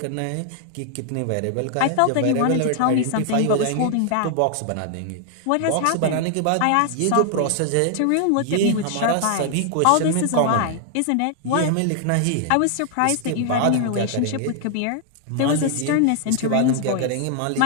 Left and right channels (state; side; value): different; both; correlation 0.00